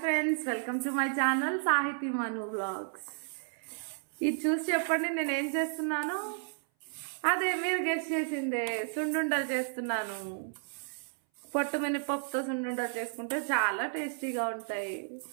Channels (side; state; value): left; silent; 56 dB below the other